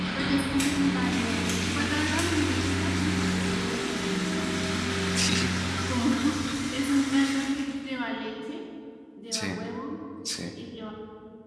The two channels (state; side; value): identical; both; correlation 1.00